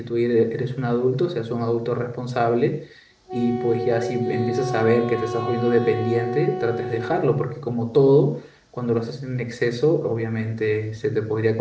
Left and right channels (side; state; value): both; identical; correlation 1.00